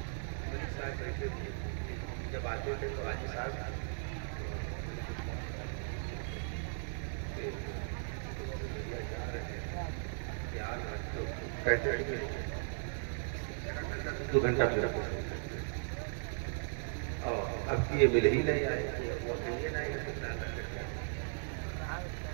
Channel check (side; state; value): left; silent; digital silence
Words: جب آتے تھے تو حاجی صاحب کہتے ہیں 2 گھنٹہ پھر اور اب یہ مل ہی نہیں آئے.